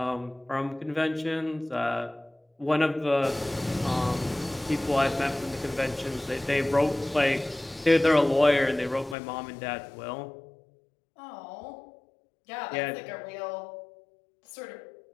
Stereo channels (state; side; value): drops out; right; at 9.2 s